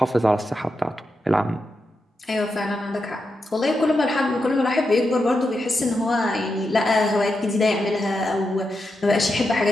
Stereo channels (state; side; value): normal; both; correlation 0.86